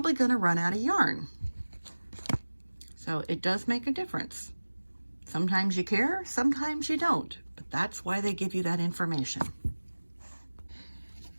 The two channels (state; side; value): inverted; both; correlation -1.00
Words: going to run out of yarn. So it does make a difference. Sometimes you care, sometimes you don't, but that's why they give you that information.